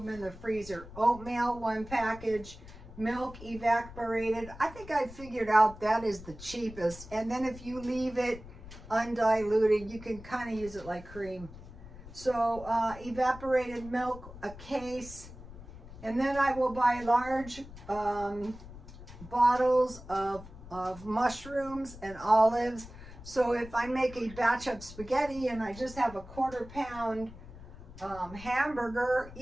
in the freezer. Oatmeal, 1 package, milk evaporated. I think I figured out that is the cheapest. And then if you leave it undiluted, you can kind of use it like cream. So evaporated milk, a case. And then I will buy large bottles of mushrooms and olives. So if I make a batch of spaghetti and I just have a 1/4 pound hamburger,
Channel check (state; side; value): noise; left; rumble, 16 dB below the sound